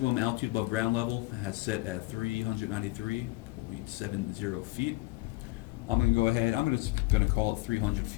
altitude above ground level has set at 393.70 feet. I'm going to go ahead, I'm going to call it 300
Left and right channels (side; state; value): right; quieter; 21.3 dB